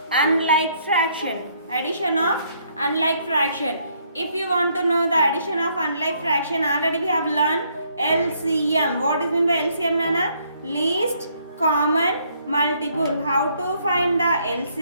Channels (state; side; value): inverted; both; correlation -0.69